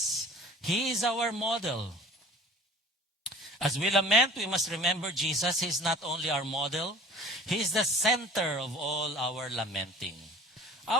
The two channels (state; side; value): normal; both; correlation 0.45